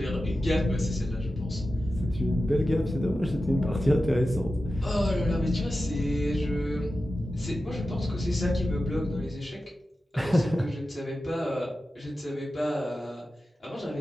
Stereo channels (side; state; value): both; normal; correlation 0.93